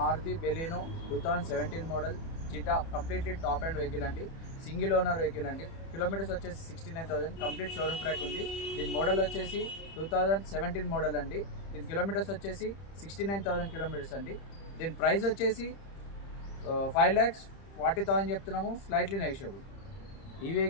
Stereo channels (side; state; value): right; late; 30 ms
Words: బెలినో 2017 మోడల్. చిటా కంప్లీట్లీ టాప్ అండ్ వెహికల్ అండి. సింగిల్ ఓనర్ వెహికల్ అండి. కిలోమీటర్స్ వచ్చేసి 69,000. కంప్లీట్ షోరూమ్ ట్రాక్ ఉంది. దీని మోడల్ వచ్చేసి 2017 మోడల్ అండి. దీని కిలోమీటర్స్ వచ్చేసి 69,000 కిలోమీటర్స్ అండి. దీని ప్రైస్ వచ్చేసి 5,40,000 చెప్తున్నాము, స్లైట్లీ నెగోషియబుల్. ఈ